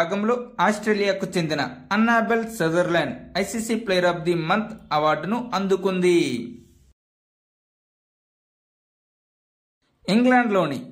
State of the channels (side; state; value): both; identical; correlation 1.00